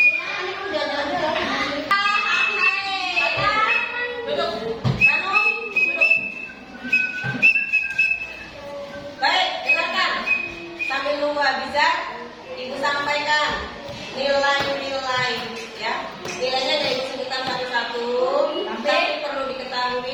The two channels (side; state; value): both; identical; correlation 1.00